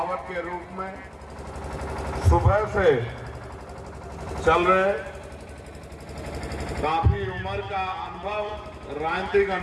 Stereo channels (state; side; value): identical; both; correlation 1.00